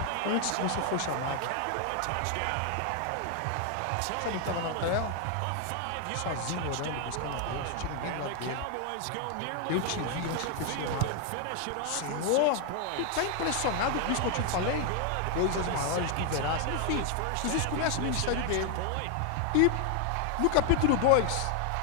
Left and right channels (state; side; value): different; both; correlation 0.00